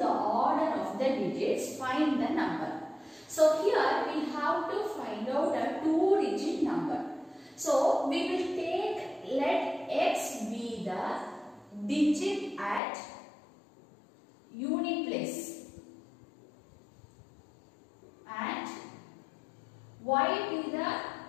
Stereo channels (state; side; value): drops out; right; at 12.8 s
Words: order of the digits. Find the number. So here we have to find out a 2-digit number. So we will take, let x be the digit at unit place and y be the